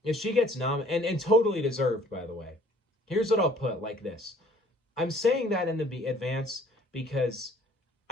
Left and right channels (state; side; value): normal; both; correlation 0.56